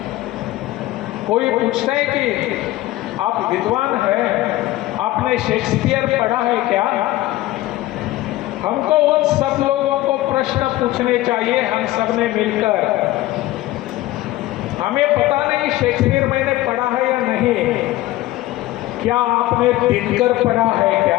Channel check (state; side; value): quieter; right; 16.4 dB